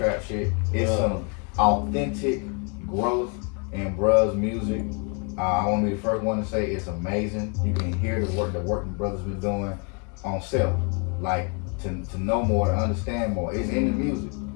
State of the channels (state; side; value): quieter; right; 36.7 dB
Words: shit. It's some authentic growth in Bruh's music. I want to be the first one to say it's amazing. You can hear the work the brothers been doing on self. Like to know more, to understand more. It's in the music.